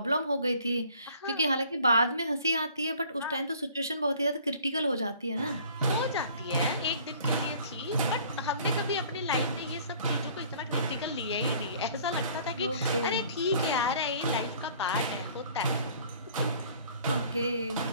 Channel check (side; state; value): both; inverted; correlation -0.53